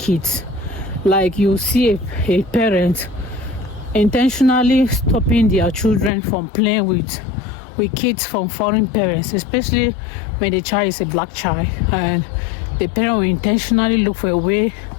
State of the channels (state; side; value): drops out; right; at 6.1 s